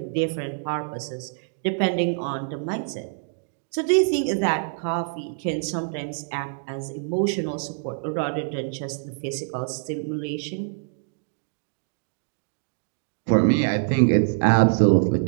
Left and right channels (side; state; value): left; silent; digital silence